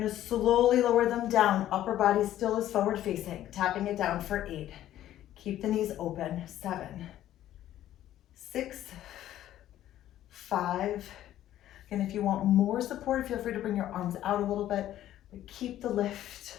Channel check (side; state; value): right; quieter; 12.7 dB